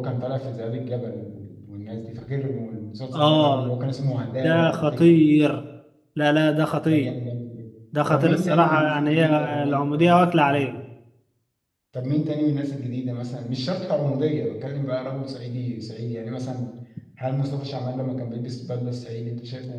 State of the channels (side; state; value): both; identical; correlation 1.00